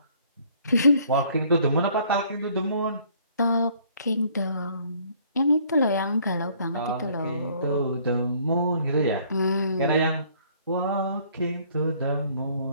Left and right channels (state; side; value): inverted; both; correlation -0.60